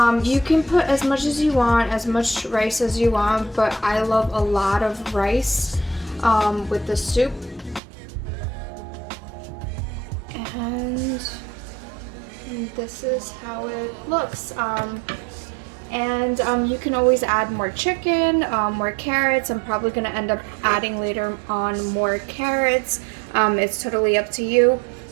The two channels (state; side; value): drops out; left; at 7.8 s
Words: you can put as much as you want, as much rice as you want, but I love a lot of rice with the soup. And this is how it looks. And you can always add more chicken, more carrots. I'm probably gonna end up adding later on more carrots. It's totally up to you.